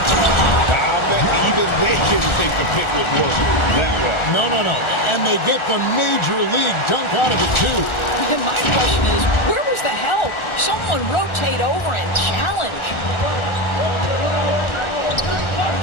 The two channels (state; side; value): late; right; 1.4 ms